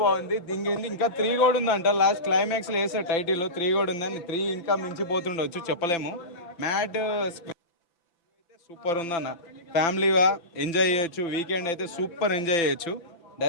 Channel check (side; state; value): right; late; 5.9 ms